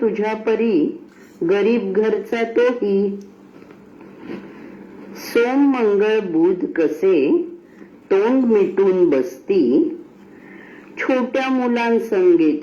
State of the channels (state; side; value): identical; both; correlation 1.00